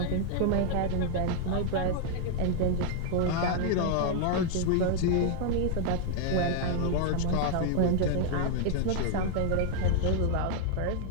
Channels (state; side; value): different; both; correlation 0.00